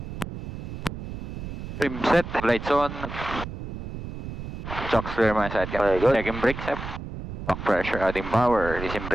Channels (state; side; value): noise; right; rumble, 9 dB below the sound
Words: Trim set. Lights on. Chocks clear my side. Okay, good. Checking brakes. Back pressure, adding power. Releasing